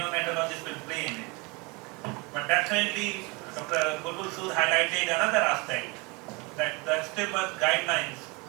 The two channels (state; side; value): quieter; left; 27.8 dB